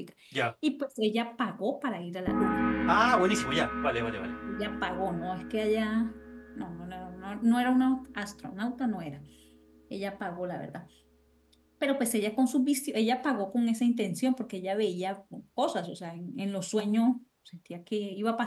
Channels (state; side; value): identical; both; correlation 1.00